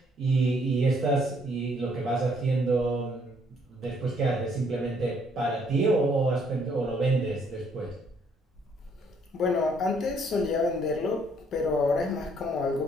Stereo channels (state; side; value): normal; both; correlation 0.66